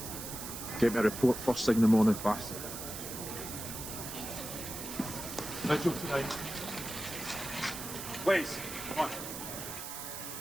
Get me a report first thing in the morning, bastard. No joke tonight. Please, come on.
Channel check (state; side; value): noise; right; hiss, 8 dB below the sound